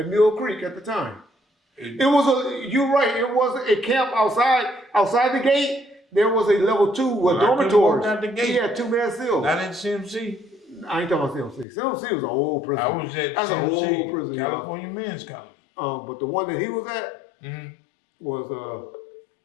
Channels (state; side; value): drops out; right; at 11.7 s